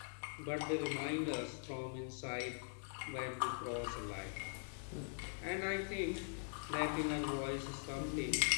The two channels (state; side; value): silent; right; digital silence